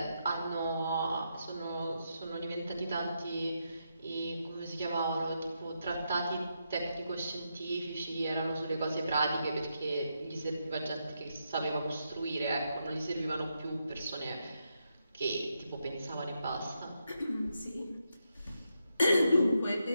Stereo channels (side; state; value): both; inverted; correlation -0.83